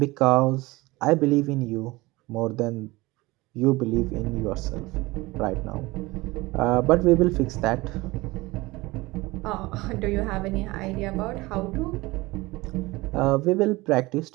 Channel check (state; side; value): quieter; left; 21.3 dB